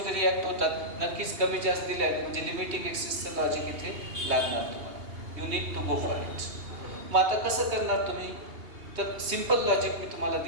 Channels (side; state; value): left; late; 2.8 ms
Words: रिॲक्ट होतात। नक्कीच कमी जास्त दिले आहेत, म्हणजे लिमिटिंग एक्सेसचं लॉजिक इथे लागणार तुम्हाला। You need to go for it. मग आता कसं करणार तुम्ही? तर सिंपल लॉजिक मी तुम्हाला